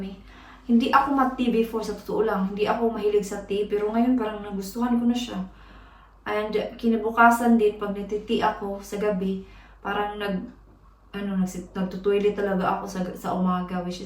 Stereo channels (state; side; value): identical; both; correlation 1.00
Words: Hindi ako mat-tea before, sa totoo lang. Hindi ako mahilig sa tea. Pero ngayon, parang nagustuhan ko na siya. And kinabukasan din, pag nagti-tea ako sa gabi, parang nagtutoilet talaga ako sa umaga, which